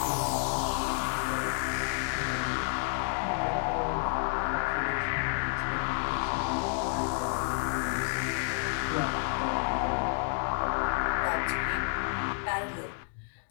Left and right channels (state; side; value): silent; right; 58 dB below the other